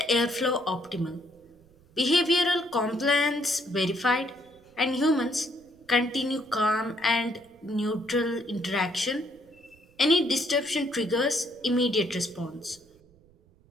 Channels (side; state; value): right; noise; rumble, 30 dB below the sound